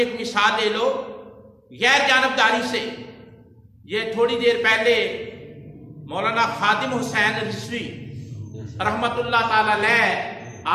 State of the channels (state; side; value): identical; both; correlation 1.00